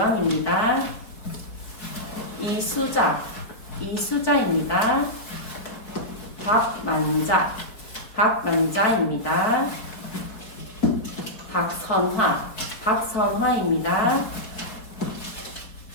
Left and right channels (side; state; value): right; late; 4.9 ms